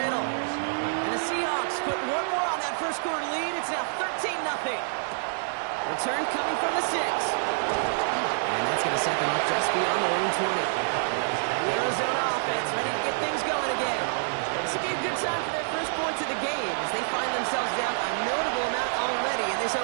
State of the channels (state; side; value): silent; left; digital silence